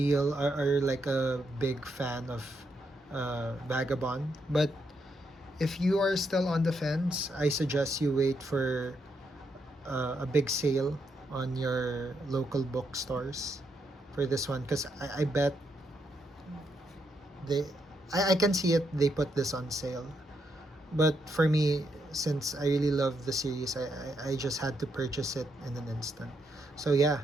or like a big fan of Vagabond. But if you are still on the fence, I suggest you wait for a big sale on your local bookstores for this one, because I bet I can see it, they put this on sale. But for me, since I really love the series, I just had to purchase it in an instant. So yeah,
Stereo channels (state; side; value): normal; both; correlation 0.79